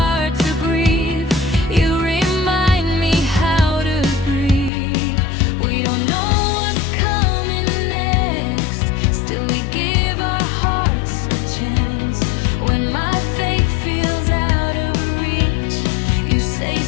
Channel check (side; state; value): right; drops out; at 4.7 s